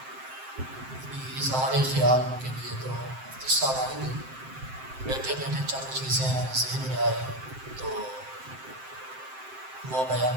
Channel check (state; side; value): late; left; 7.6 ms